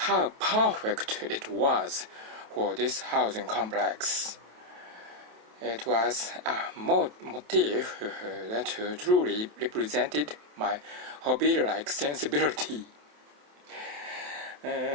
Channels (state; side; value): late; left; 27 ms